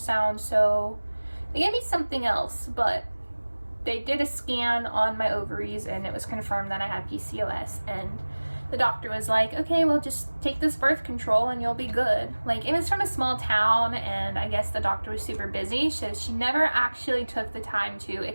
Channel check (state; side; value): inverted; both; correlation -1.00